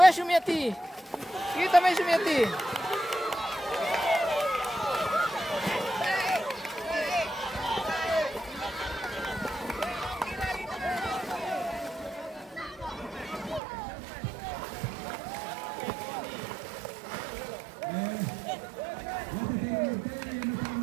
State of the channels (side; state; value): left; drops out; at 13.6 s